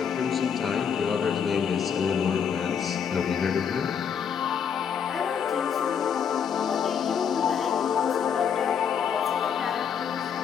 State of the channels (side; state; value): right; quieter; 7.4 dB